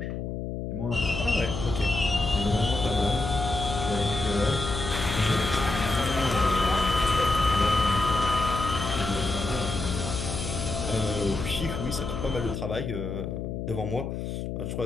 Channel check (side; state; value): left; noise; hum, 5 dB below the sound